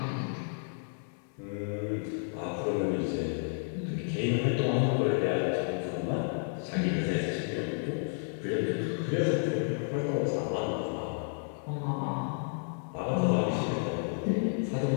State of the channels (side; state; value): right; silent; 57 dB below the other